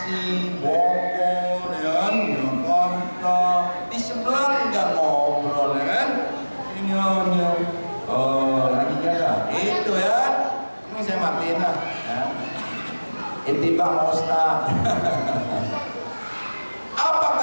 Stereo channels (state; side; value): inverted; both; correlation -1.00